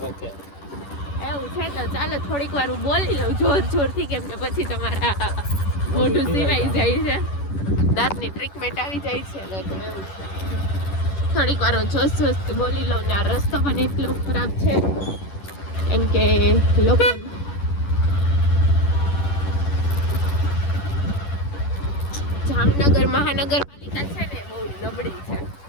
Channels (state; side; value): late; right; 10 ms